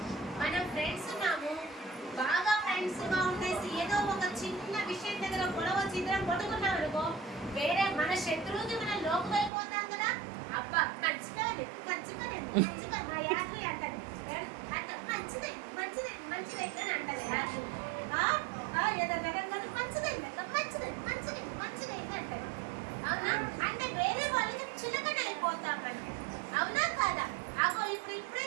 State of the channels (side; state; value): left; drops out; at 9.5 s